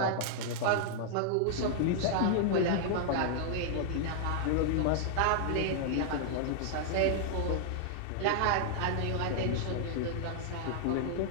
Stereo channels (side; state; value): both; different; correlation -0.01